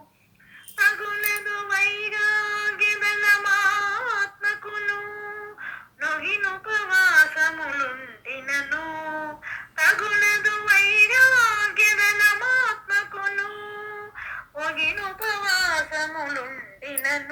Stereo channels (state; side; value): identical; both; correlation 1.00